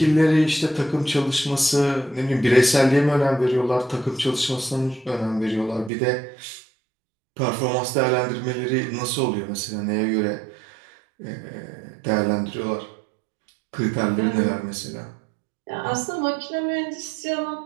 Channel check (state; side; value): drops out; left; at 5.9 s